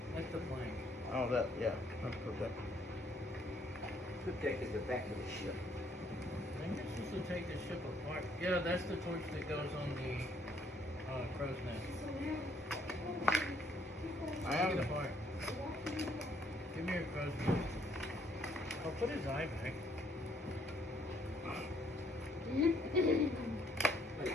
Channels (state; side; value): normal; both; correlation 0.66